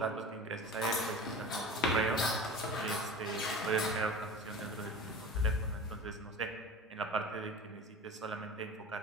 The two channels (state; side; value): normal; both; correlation 0.36